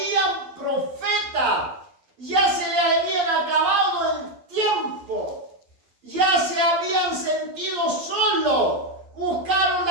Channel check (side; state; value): left; late; 12 ms